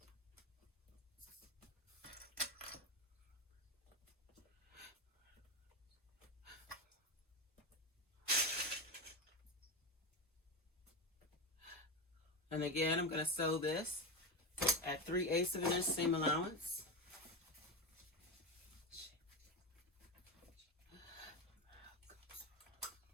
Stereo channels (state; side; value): normal; both; correlation 0.18